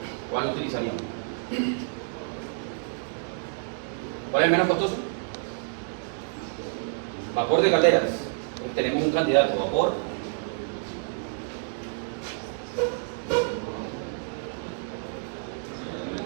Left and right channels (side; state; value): left; silent; 59 dB below the other